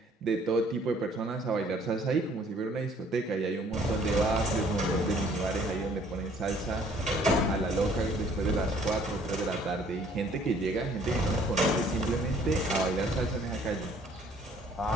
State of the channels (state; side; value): normal; both; correlation 0.59